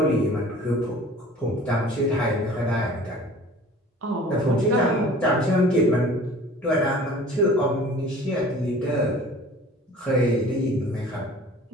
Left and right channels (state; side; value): normal; both; correlation 0.45